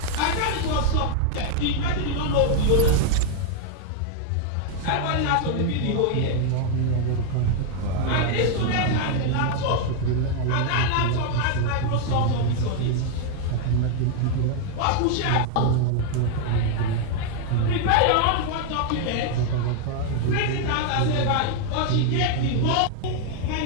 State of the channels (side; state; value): both; different; correlation 0.00